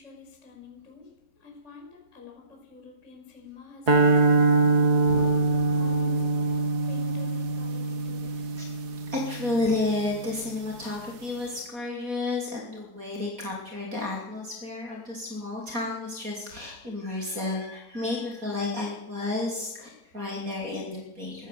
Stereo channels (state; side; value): late; left; 4.2 ms